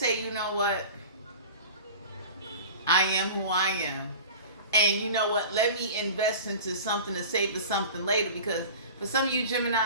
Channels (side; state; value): both; inverted; correlation -0.37